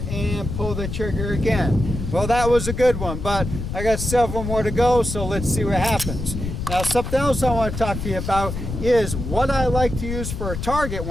and pull the trigger again. Well, that was a good one, but I got several more to go, so let's see what happens. Now, something else I want to talk to you about is what I like to use for a target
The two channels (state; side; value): noise; left; rumble, 5 dB below the sound